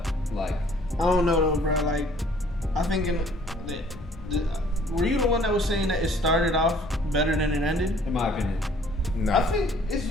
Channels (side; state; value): both; normal; correlation 0.57